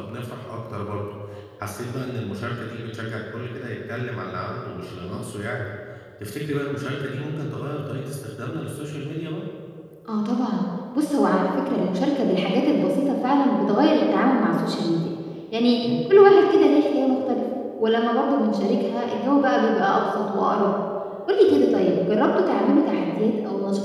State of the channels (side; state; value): both; identical; correlation 1.00